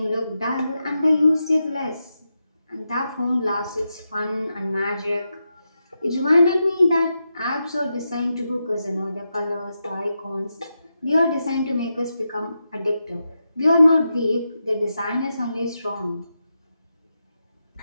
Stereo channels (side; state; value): both; inverted; correlation -0.87